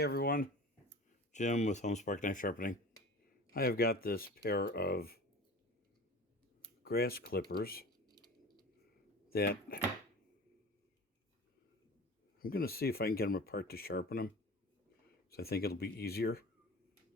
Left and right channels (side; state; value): both; normal; correlation 0.37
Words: everyone, Jim with Homespark Knife Sharpening. I have got this pair of grass clippers that I'm going to see if I can get them apart to sharpen them. So I think it'll be easier.